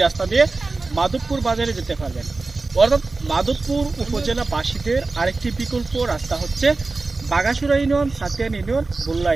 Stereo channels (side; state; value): left; quieter; 3.6 dB